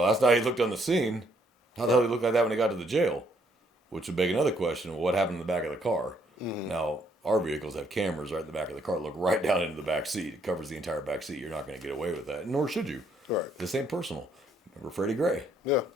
that's not how he looked on the scene. How the hell did he look like that when he got to the jail? Which would beg another question of what happened in the back of the car. Now, our vehicles have cameras right in the back of the car. Look right down into the back seat. It covers the entire back seat. You're not going to get away with that, nor should you. Right. This ain't personal. Remember Freddie Gray? Yeah.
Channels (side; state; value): both; normal; correlation 0.69